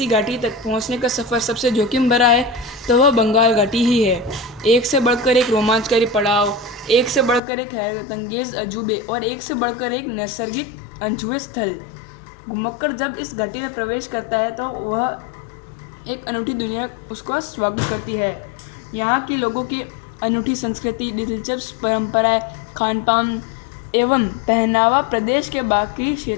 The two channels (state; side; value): drops out; right; at 7.4 s